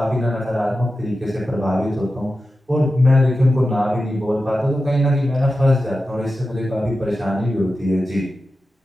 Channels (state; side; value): normal; both; correlation 0.92